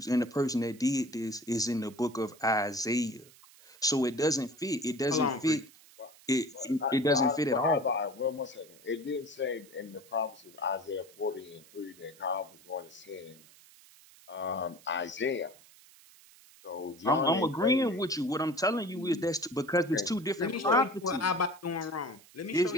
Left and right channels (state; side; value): noise; right; hiss, 24 dB below the sound